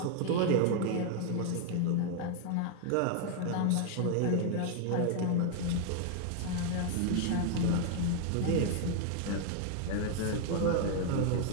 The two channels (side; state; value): both; different; correlation 0.00